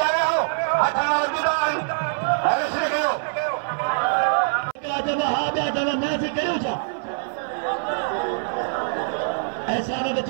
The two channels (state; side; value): silent; left; 56 dB below the other